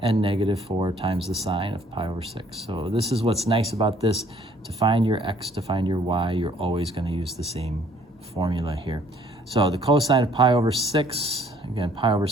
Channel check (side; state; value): both; normal; correlation 0.60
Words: and negative 4 times the sine of pi over 6. So this is what's nice about this. To find your x, to find your y, you're always going to use the same formula here. So the cosine of pi over 6, again, pi over